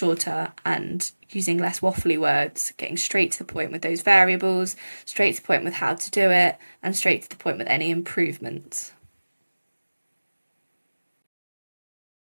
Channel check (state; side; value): inverted; both; correlation -1.00